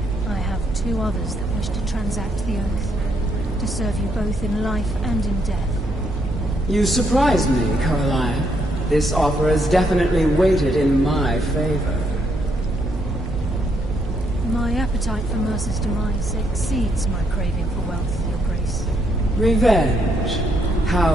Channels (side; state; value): both; normal; correlation 0.74